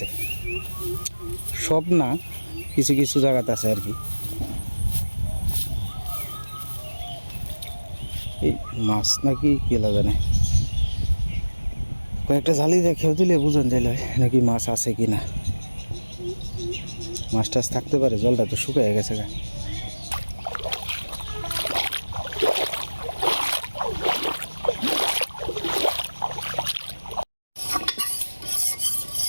সব না, কিছু কিছু জায়গাতে আছে আর কি। এই মাছ নাকি কি জানে, কয়েকটা জালি দেখেও দিলে বুঝন যাইল নাকি মাছ আছে কি না। মাছ টাছ থাকতে পারে, জলটা তো শুকিয়ে গেছে গা।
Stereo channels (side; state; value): both; inverted; correlation -1.00